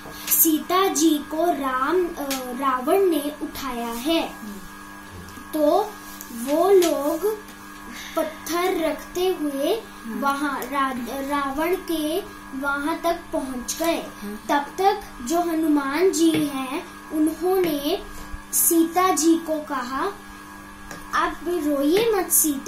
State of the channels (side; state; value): both; identical; correlation 1.00